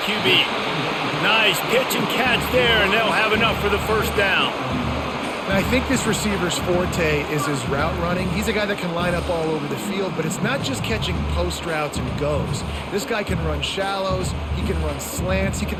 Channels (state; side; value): identical; both; correlation 1.00